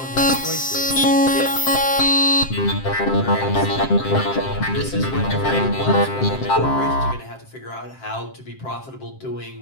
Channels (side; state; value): right; late; 7.6 ms